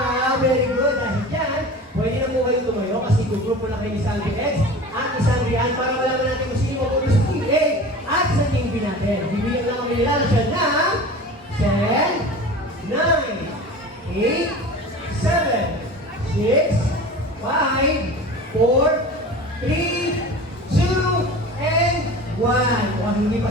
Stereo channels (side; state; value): both; normal; correlation 0.36